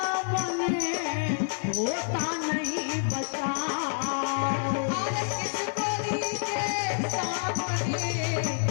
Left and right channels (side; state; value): right; silent; 59 dB below the other